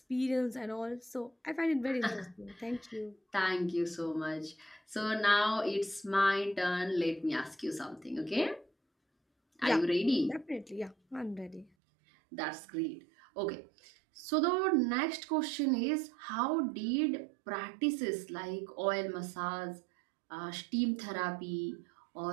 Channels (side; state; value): left; drops out; at 11.7 s